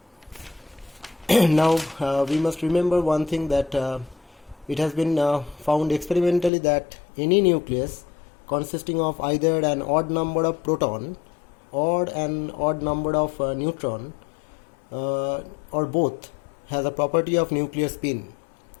Now we must remember one thing, that it has been found experimentally that any nucleus consisting of either an odd number of proton or an odd number of neutron or both has a property of nuclear spin.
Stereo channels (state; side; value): drops out; right; at 6.5 s